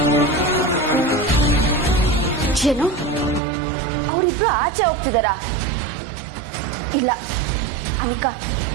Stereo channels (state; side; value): drops out; left; at 3.4 s